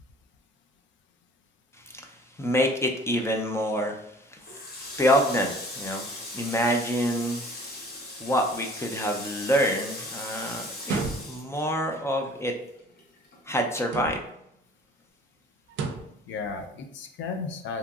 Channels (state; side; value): normal; both; correlation 0.49